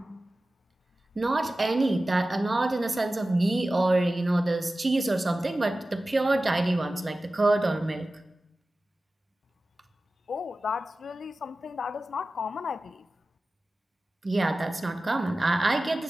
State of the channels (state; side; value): normal; both; correlation 0.96